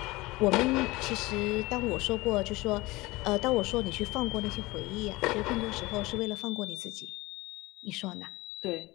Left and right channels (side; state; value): right; quieter; 21.2 dB